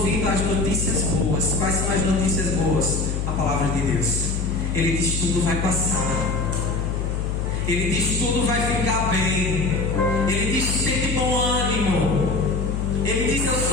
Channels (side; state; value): left; noise; hum, 1 dB below the sound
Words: às notícias boas. Quais são as notícias boas? A palavra de Deus. Ele diz: tudo vai passar. Ele diz: tudo vai ficar bem. Ele diz: tem de bom ânimo. Ele diz: eu